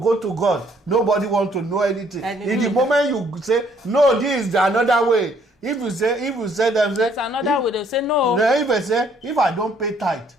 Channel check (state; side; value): normal; both; correlation 0.64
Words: to God. Nobody wants to know anything. In the moment you say, no, this is another way. If you say them, say, it's another way, they say no. If I say, if I don't pay tithe,